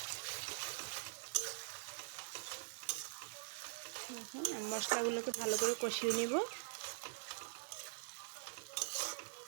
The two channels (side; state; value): left; silent; digital silence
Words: মশলাগুলোকে ভালো করে কষিয়ে নেব।